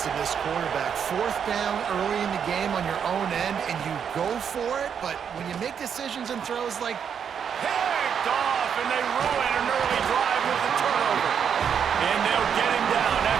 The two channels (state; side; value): quieter; left; 7.6 dB